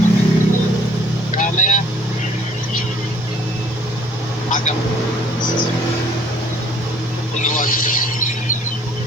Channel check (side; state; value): both; normal; correlation 0.57